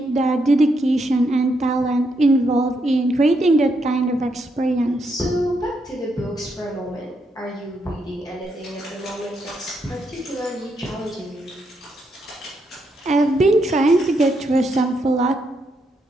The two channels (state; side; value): normal; both; correlation 0.79